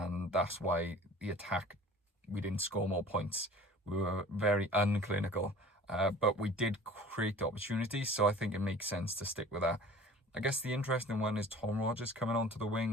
that's why the attack, we didn't score more points. We were very unclinical, but we did create opportunities, so I think it makes sense to stick with that. I guess the interesting one is Tom Rogers coming onto the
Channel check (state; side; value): normal; both; correlation 0.46